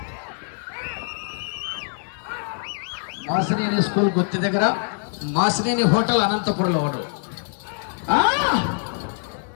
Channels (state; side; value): silent; right; 63 dB below the other